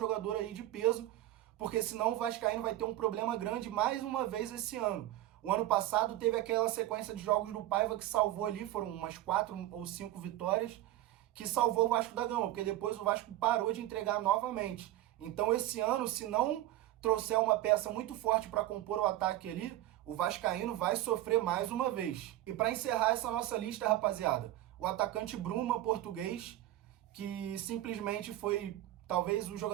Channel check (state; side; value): quieter; left; 14.7 dB